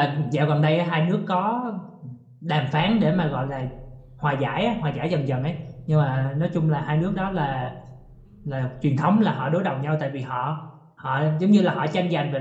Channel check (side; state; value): both; identical; correlation 1.00